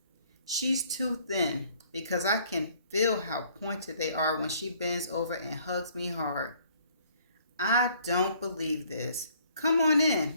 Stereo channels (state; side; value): inverted; both; correlation -0.61